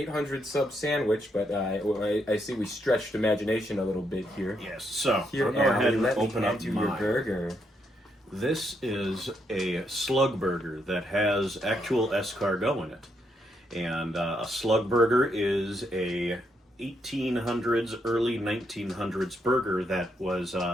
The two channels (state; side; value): normal; both; correlation 0.78